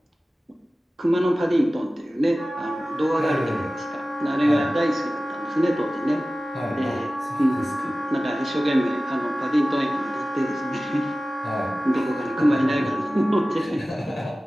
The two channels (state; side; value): normal; both; correlation 0.96